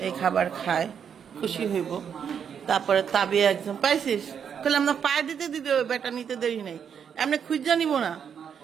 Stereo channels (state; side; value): quieter; left; 7.6 dB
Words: এই খাবার খায় খুশি হইব। তারপরে তাবিয়া একদম পাইছিস তাহলে আমরা পায়ে দিতে দিতে বেটা নিতে দেরি নেই, এমনি খুঁজা নিব না,